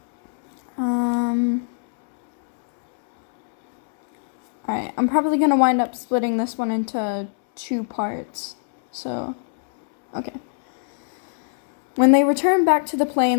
Alright, I'm probably gonna wind up splitting this one into 2 parts. So, okay. When they return back to the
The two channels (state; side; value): silent; right; 65 dB below the other